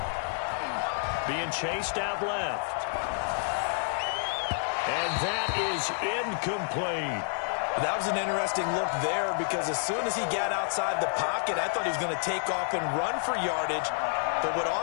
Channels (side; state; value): right; silent; 58 dB below the other